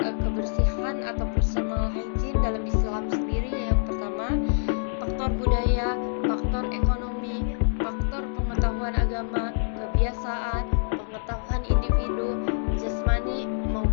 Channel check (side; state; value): right; silent; digital silence